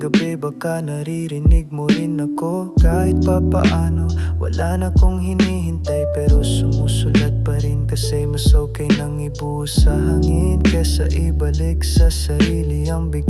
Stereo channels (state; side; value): identical; both; correlation 1.00